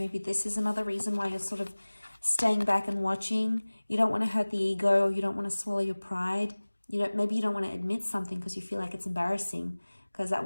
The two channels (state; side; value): inverted; both; correlation -1.00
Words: this is another reason why you're sort of staying back and watching. You don't want to hurt the ego, or you don't want to swallow your pride. Maybe you don't want to admit something because you feel like it's embarrassing, because at